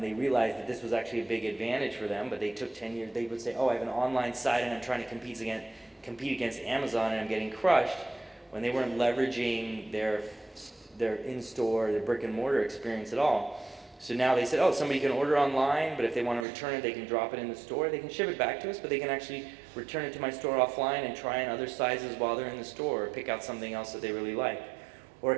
they realized that this was actually a big advantage for them, but they took 10 years. They would say, oh, I have an online site and I'm trying to compete against Amazon and I'm getting crushed, when they weren't leveraging their in-store, their brick and mortar experience at all. So now they said, oh, somebody can order online, but if they want to return it, they can drop it in the store. They can ship it back to us, but they can actually return it to my store offline and try on other sizes while they're in the store, or pick out something else that they really like. Or a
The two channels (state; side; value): drops out; left; at 16.4 s